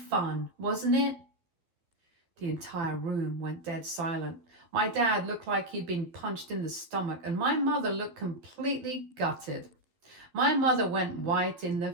wasn't it? The entire room went dead silent. My dad looked like he'd been punched in the stomach, and my mother looked completely gutted. My mother went white in the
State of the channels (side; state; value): left; late; 12 ms